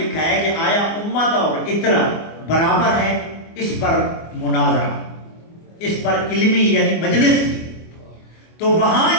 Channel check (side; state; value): right; late; 24 ms